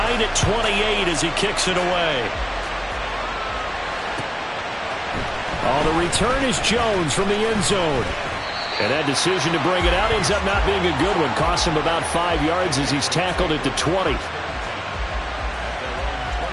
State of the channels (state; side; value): identical; both; correlation 1.00